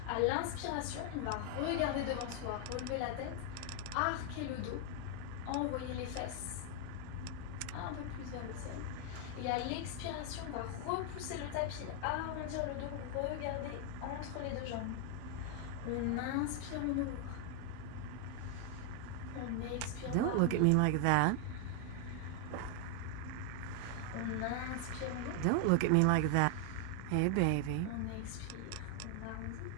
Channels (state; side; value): different; both; correlation 0.00